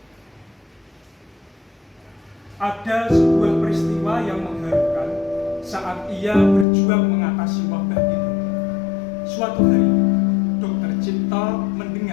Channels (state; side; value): drops out; right; at 6.7 s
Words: Ada sebuah peristiwa yang mengharukan saat ia berjuang mengatasi wabah itu. Suatu hari, Dr. Cipto